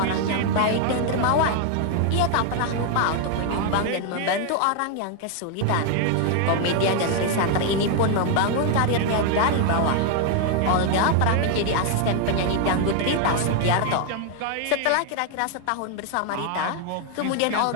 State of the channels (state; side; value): different; both; correlation 0.00